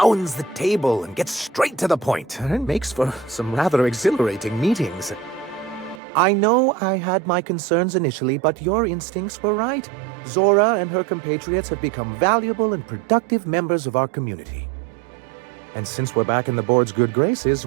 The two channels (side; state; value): left; drops out; at 6.0 s